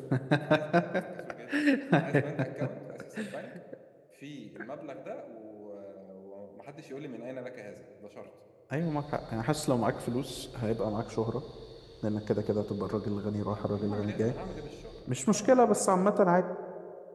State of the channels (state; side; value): identical; both; correlation 1.00